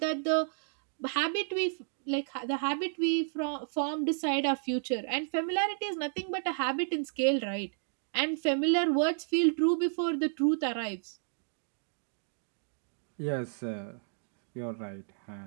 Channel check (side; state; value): left; silent; digital silence